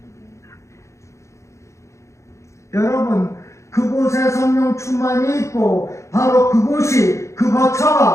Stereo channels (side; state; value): right; late; 0.14 ms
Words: 여러분, 그곳에 성령 충만이 있고 바로 그곳이, 그